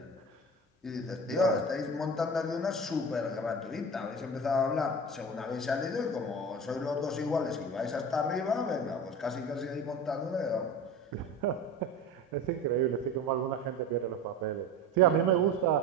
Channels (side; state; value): both; normal; correlation 0.32